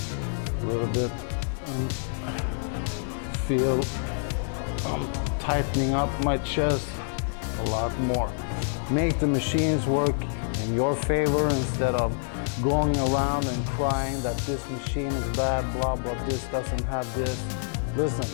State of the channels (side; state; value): right; silent; 60 dB below the other